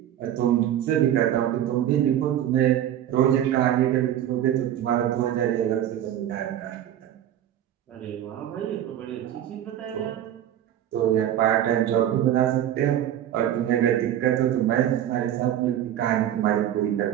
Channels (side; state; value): left; quieter; 11.2 dB